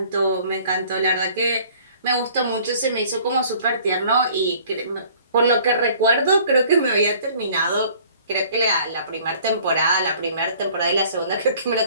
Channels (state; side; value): inverted; both; correlation -0.53